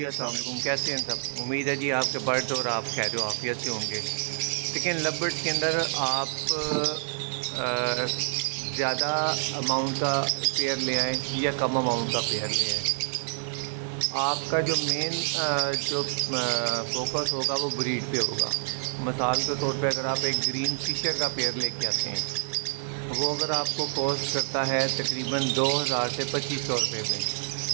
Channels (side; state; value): left; silent; 60 dB below the other